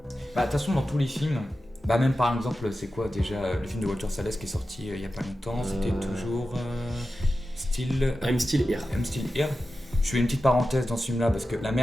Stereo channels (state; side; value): normal; both; correlation 0.92